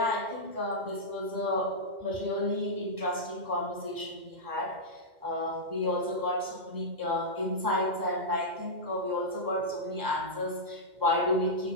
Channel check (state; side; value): late; left; 2.1 ms